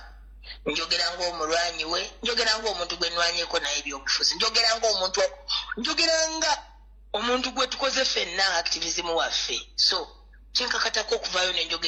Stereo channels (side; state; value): both; identical; correlation 1.00